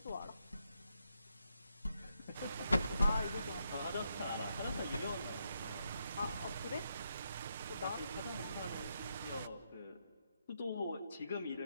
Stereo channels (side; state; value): both; inverted; correlation -0.80